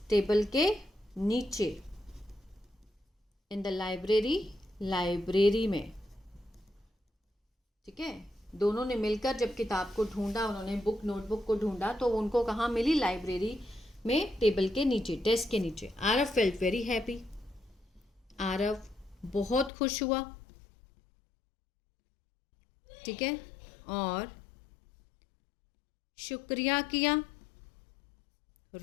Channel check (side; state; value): right; drops out; at 19.7 s